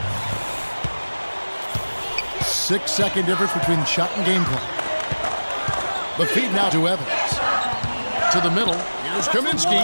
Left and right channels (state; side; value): inverted; both; correlation -1.00